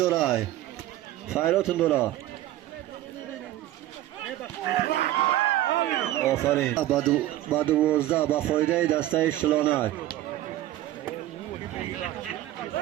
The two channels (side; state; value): left; quieter; 14.5 dB